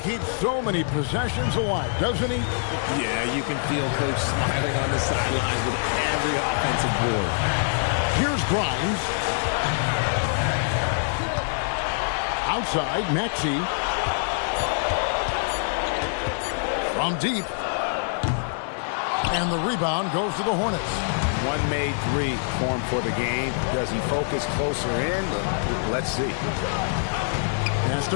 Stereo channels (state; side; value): silent; right; digital silence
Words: so many possessions alive, doesn't he? Yeah, you can feel Coach smiling on the sidelines with every offensive board. Here's Grimes. Outside, Maxey. From deep. And the rebound goes to the Hornets. One made 3 formed for the game. Does he focus closer in? Let's see. Pass